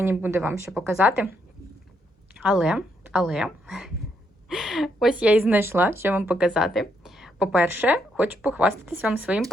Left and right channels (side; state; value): both; normal; correlation 0.76